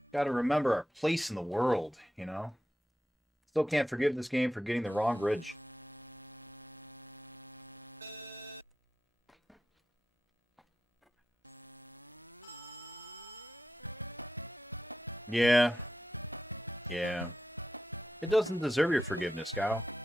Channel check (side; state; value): both; normal; correlation 0.89